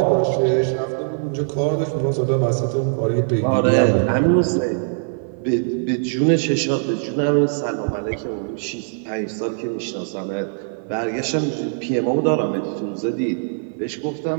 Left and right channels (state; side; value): silent; left; 60 dB below the other